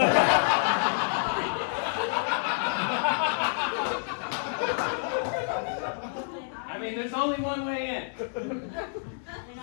I mean, there's only one way in. And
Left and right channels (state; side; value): silent; right; digital silence